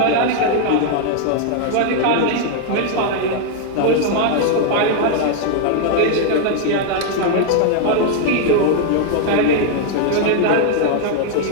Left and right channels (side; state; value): both; different; correlation 0.00